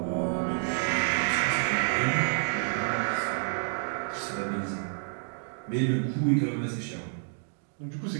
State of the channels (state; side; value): silent; left; digital silence